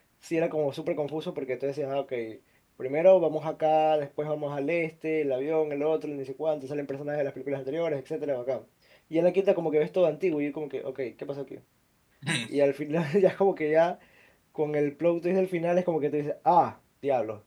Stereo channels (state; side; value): identical; both; correlation 1.00